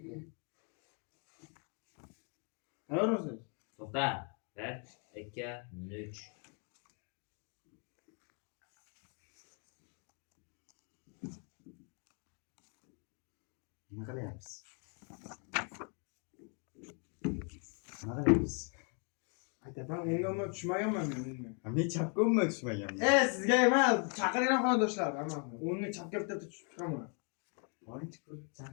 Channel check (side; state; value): right; quieter; 39.0 dB